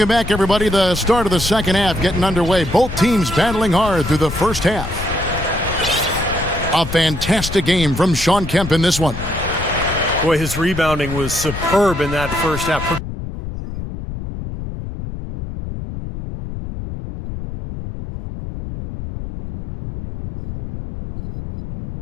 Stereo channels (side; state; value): left; noise; rumble, 8 dB below the sound